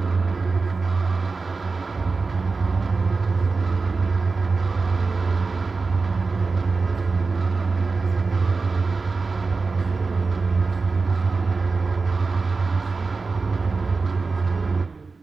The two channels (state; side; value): quieter; left; 4.2 dB